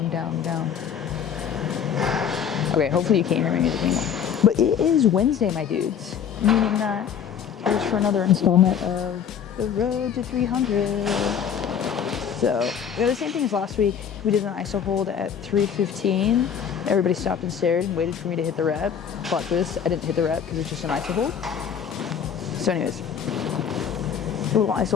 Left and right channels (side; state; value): right; quieter; 8.0 dB